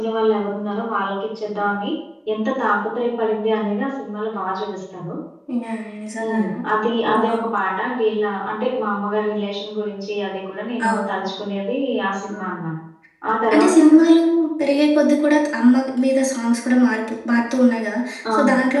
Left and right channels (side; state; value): both; identical; correlation 1.00